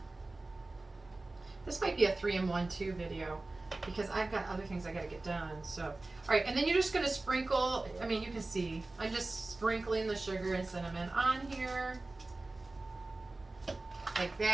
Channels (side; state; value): left; quieter; 3.1 dB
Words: This might be a 3-in-1 video because I've got other things I gotta get done. So, all right, and then you're just gonna sprinkle. You can see I'm just sprinkling the sugar and cinnamon on here like